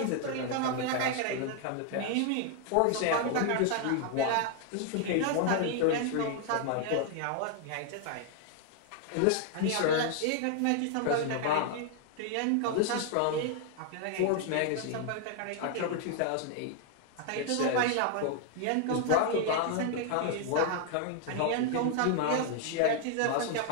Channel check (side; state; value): both; different; correlation 0.00